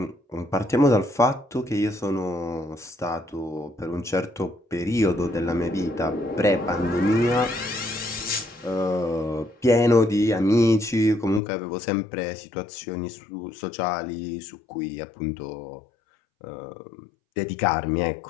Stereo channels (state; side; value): drops out; right; at 11.4 s